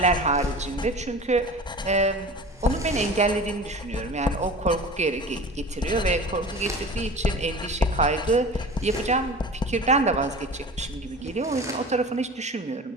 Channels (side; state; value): both; normal; correlation 0.37